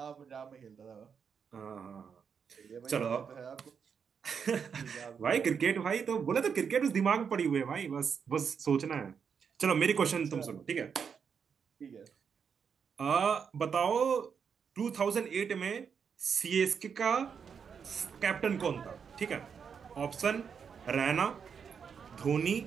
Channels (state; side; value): quieter; left; 6.7 dB